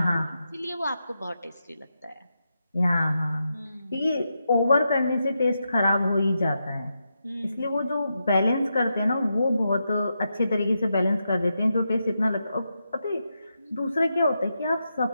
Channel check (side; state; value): both; inverted; correlation -0.86